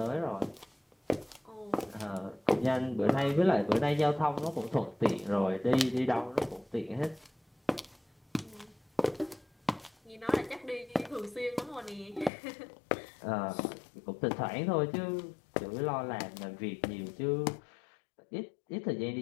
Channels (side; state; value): right; drops out; at 12.3 s